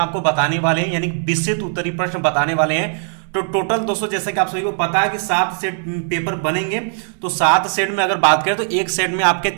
बताने वाले हैं, यानी विस्तृत उत्तरीय प्रश्न बताने वाले हैं। तो टोटल दोस्तों, जैसा कि आप सभी को पता है कि 7 सेट पेपर बनेंगे। तो 7 सेट में अगर बात करें तो एक सेट में आपके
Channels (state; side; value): silent; left; 59 dB below the other